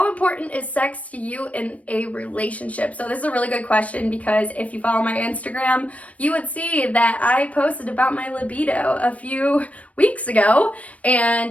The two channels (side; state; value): right; late; 0.066 ms